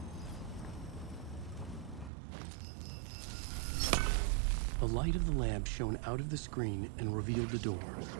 The light of the lamp shone out of the screen and revealed the door.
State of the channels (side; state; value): left; drops out; at 2.1 s